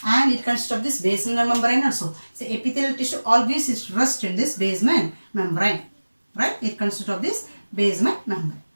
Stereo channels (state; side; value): inverted; both; correlation -1.00